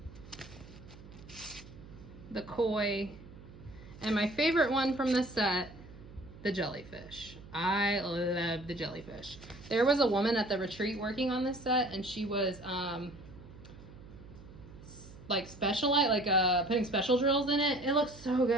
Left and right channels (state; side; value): noise; right; hum, 18 dB below the sound